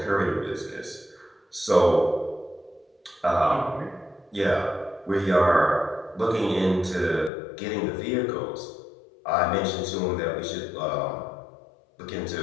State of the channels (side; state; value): right; drops out; at 7.3 s